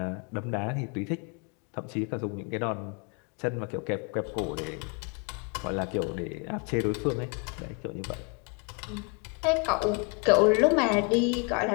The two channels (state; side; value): quieter; right; 34.3 dB